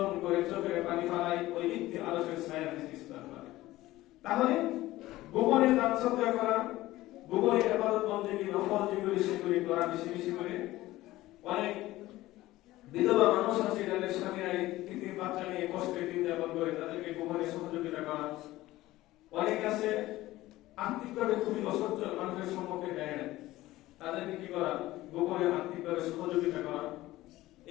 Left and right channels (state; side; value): quieter; right; 16.9 dB